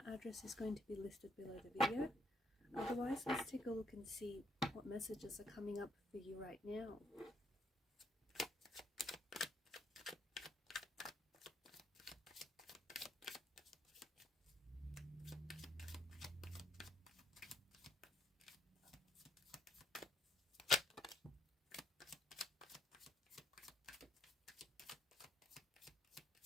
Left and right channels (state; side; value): normal; both; correlation 0.72